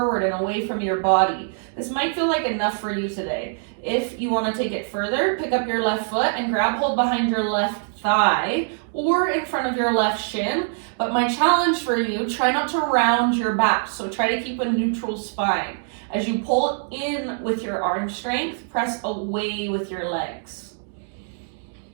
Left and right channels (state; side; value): silent; left; digital silence